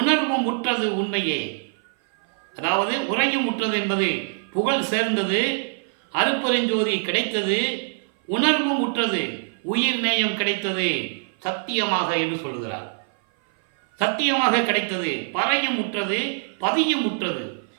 உற்றது உண்மையே. அதாவது உரையும் உற்றது என்பது புகழ் சேர்ந்தது, அருட்பெருஞ்சோதி கிடைத்தது, உணர்வும் உற்றது, உயிர் நேயம் கிடைத்தது சத்தியமாக என்று சொல்லுகிறார். சத்தியமாக கிடைத்தது, பறையும் உற்றது, பதியும் உற்றது,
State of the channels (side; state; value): left; silent; 57 dB below the other